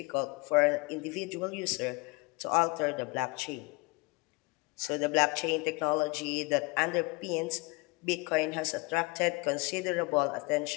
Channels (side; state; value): right; quieter; 27.4 dB